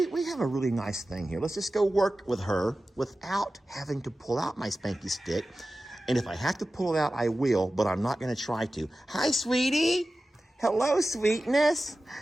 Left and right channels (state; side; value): normal; both; correlation 0.95